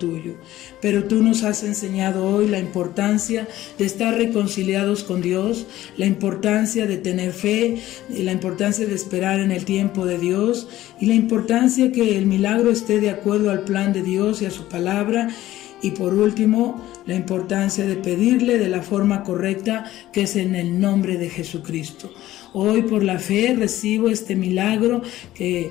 Pero tú nos has enseñado hoy la importancia de estar reconciliados con Dios, la importancia de tener fe, la importancia de esperar en el tiempo de Dios, y la importancia que el milagro esté de acuerdo al plan de Dios y a su palabra. Y por último, la importancia de pedirle de la forma correcta, que es en el nombre de Jesucristo. Hoy por la fe recibo este milagro que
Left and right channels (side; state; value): right; quieter; 14.8 dB